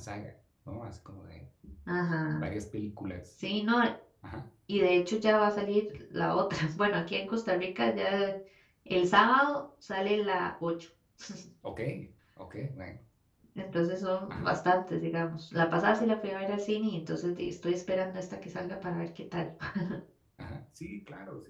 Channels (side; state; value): both; identical; correlation 1.00